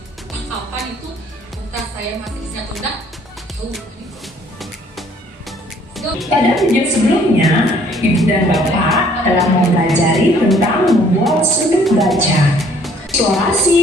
Kapan itu? Entah saya masih bisa atau enggak. Pada video sebelumnya, Ibu dan Bapak telah mempelajari tentang membuat sudut baca,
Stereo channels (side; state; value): both; normal; correlation 0.60